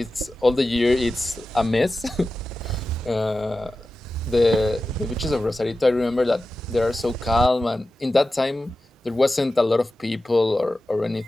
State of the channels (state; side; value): normal; both; correlation 0.94